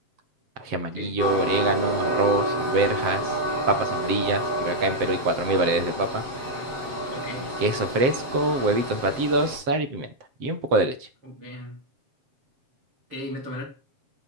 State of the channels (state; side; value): late; left; 7.7 ms